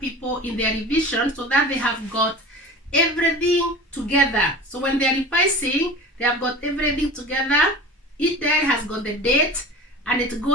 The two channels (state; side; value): normal; both; correlation 0.36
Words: in their revision so that they have got everything together. So when they are revising, they have got everything together. Each diary has got the date and it